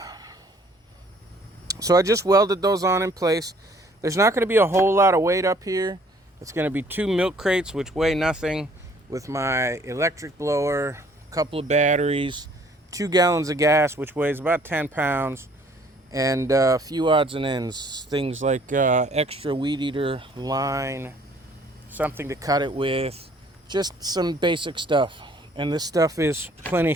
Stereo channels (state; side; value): normal; both; correlation 0.59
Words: So I just welded those on in place. There's not going to be a whole lot of weight up here. It's going to be 2 milk crates, which weigh nothing, with my electric blower, a couple of batteries, 2 gallons of gas, which weighs about 10 pounds, and a few odds and ends. Things like extra Weedeater line, something to cut it with, just some basic stuff. And this stuff is plenty